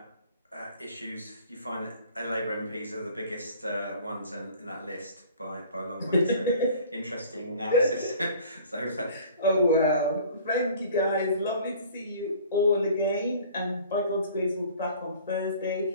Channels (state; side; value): inverted; both; correlation -0.48